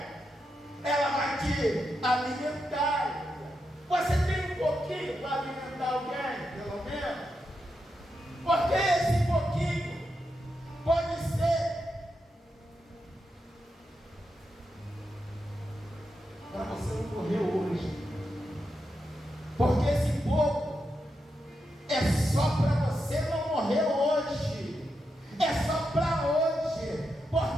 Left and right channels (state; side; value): normal; both; correlation 0.86